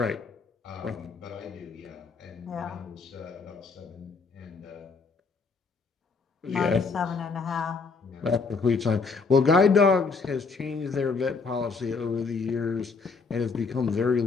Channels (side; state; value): right; quieter; 4.6 dB